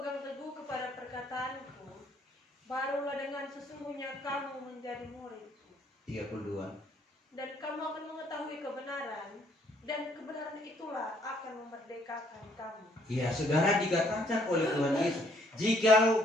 teguh kepada perkataanku, barulah dengan sesungguhnya kamu menjadi muridku. 32. Dan kamu akan mengetahui kebenaran, dan kebenaran itulah akan memerdekakan kamu." Ya, saudara, dikatakan oleh Tuhan Yesus,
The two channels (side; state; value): both; normal; correlation 0.66